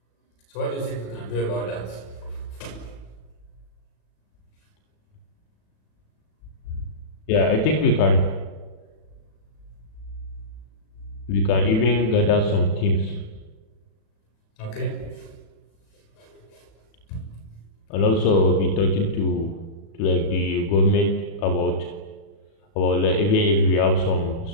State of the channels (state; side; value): late; right; 36 ms